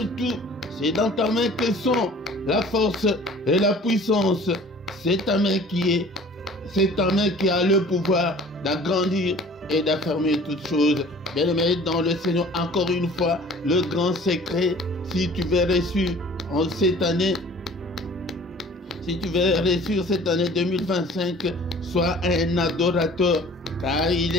tout. C'est dans ta main que sont la force et la puissance. C'est ta main qui a le pouvoir d'agrandir et d'affermir toutes choses. Bien-aimés dans le Seigneur, encore une fois, le grand secret, si tu veux réussir en cette année, si tu veux réussir cette année 2025, sois un adorateur, car il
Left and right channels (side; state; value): both; normal; correlation 0.48